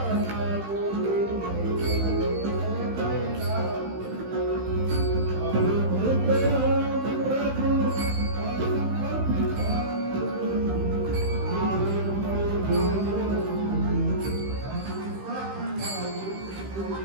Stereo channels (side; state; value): left; late; 15 ms